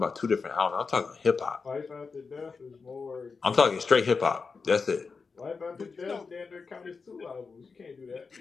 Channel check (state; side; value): quieter; right; 4.9 dB